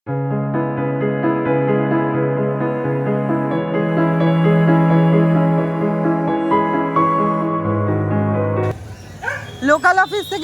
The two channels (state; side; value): identical; both; correlation 1.00